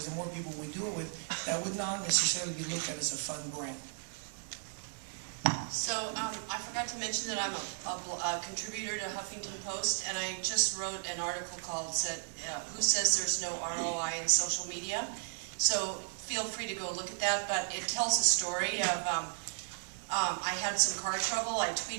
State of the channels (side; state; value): left; silent; 54 dB below the other